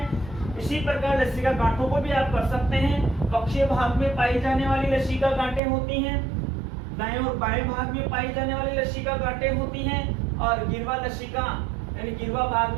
इसी प्रकार लसिका गांठों को भी आप कर सकते हैं। वक्षीय भाग में पाई जाने वाली लसिका गांठें होती हैं, दाएं और बाएं भाग में पाई जाने वाली लसिका गांठें होती हैं, और गिरवा लसिका यानी गिरवा भाग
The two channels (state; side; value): drops out; left; at 5.6 s